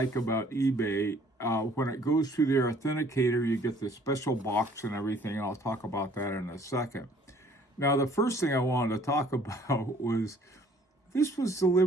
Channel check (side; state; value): both; normal; correlation 0.57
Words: about eBay, when it goes through their authenticator, you get the special box and everything, and I'll talk about that in a second. Now, the first thing I wanted to talk about was this was